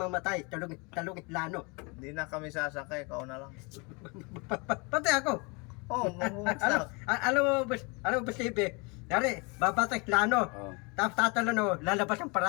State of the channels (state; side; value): quieter; right; 29.9 dB